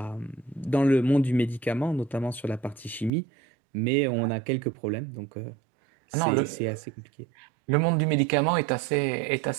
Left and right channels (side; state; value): left; drops out; at 3.1 s